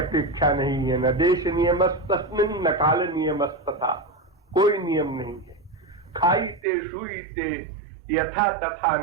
नहीं है। न देश नियमस्तस्मिन् न काल नियमस्तथा, कोई नियम नहीं है। खाईते शुईते यथा तथा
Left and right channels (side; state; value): left; drops out; at 6.6 s